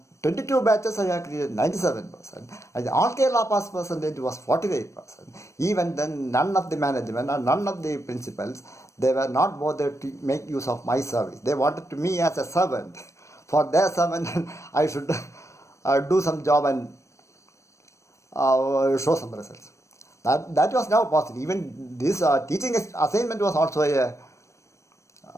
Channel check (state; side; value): late; right; 0.15 ms